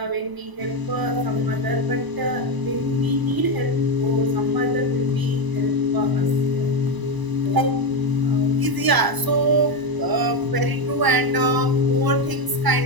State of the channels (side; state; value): left; late; 1.0 ms